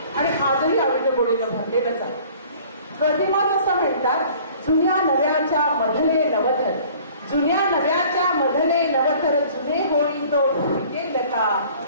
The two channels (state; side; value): inverted; both; correlation -0.51